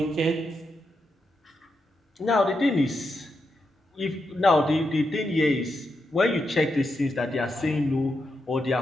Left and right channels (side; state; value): both; normal; correlation 0.84